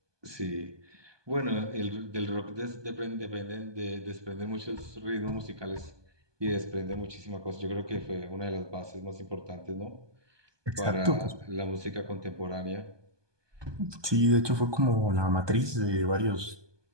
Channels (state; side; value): late; left; 1.2 ms